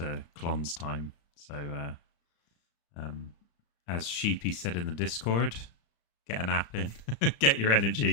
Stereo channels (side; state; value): right; late; 35 ms